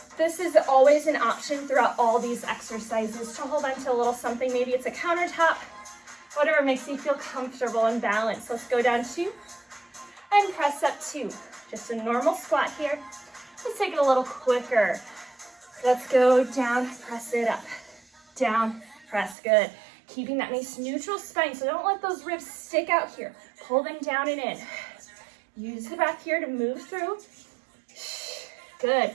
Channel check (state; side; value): drops out; left; at 19.4 s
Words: This is always an option throughout all these exercises to hold on to a little something. Maybe it's a countertop, whatever makes you feel comfortable and balanced. Let's go down 2 and press up 2. Just a normal squat here. Let's take it a little quicker. Let's go down, press it up, down, press, good. Keeping that nice neutral spine, so don't let those ribs stick out here. Pull them down and in. Use the breath here to move through.